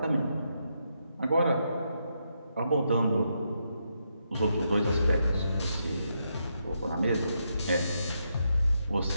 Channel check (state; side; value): inverted; both; correlation -0.81